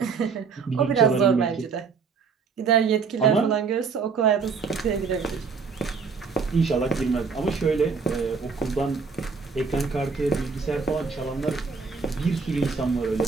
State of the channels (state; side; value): quieter; left; 5.2 dB